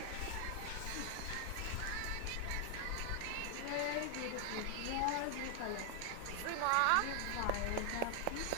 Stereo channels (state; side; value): different; both; correlation 0.00